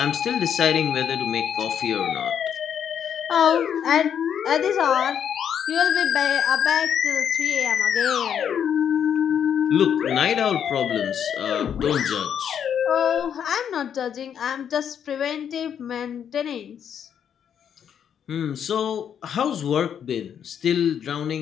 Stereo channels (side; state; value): right; quieter; 8.5 dB